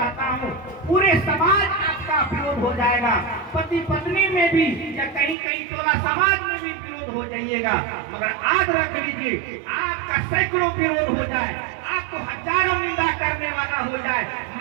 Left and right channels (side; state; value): left; drops out; at 5.4 s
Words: हूँ, पूरे समाज आपका विरोध हो जाएगा, पति पत्नी में भी या कहीं कहीं टोला समाज में भी विरोध हो जाइएगा, मगर आज रख लीजिए आपका सैकड़ों विरोध हो जाए, आपको हजारों निंदा करने वाला हो जाए,